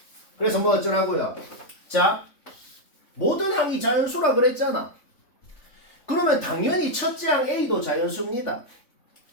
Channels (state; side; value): late; right; 3.5 ms